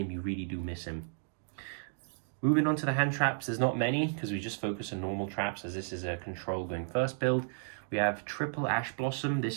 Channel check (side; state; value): left; silent; digital silence